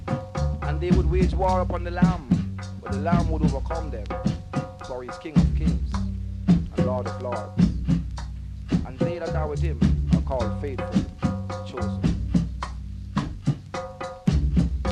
And they would wage war upon the Lamb, but the Lamb would overcome them, for he is King of Kings and Lord of Lords. And they that are with him are called faithful, chosen.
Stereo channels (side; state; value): both; identical; correlation 1.00